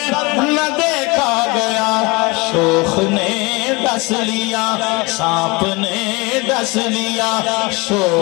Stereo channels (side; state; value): right; quieter; 26.0 dB